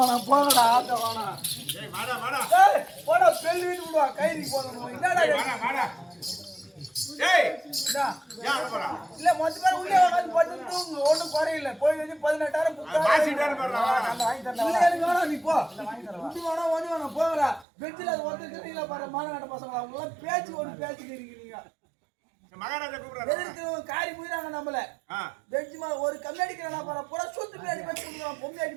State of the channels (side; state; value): left; drops out; at 17.7 s